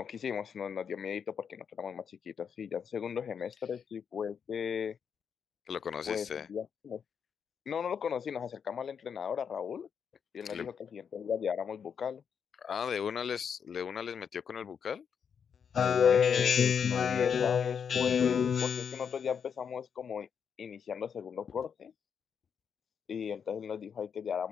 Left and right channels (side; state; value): right; quieter; 7.1 dB